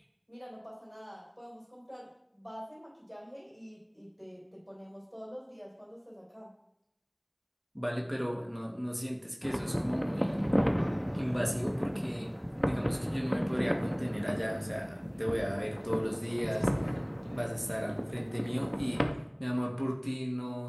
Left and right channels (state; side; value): identical; both; correlation 1.00